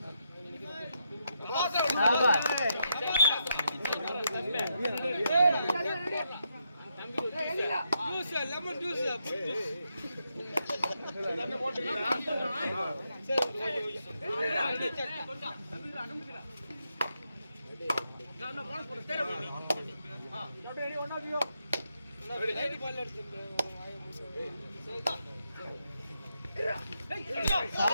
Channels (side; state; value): both; inverted; correlation -0.82